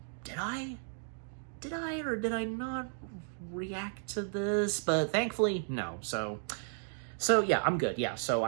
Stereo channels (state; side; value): silent; left; digital silence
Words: did I or did I not react to this? But thankfully, no. So yeah, I'm good. Yeah, so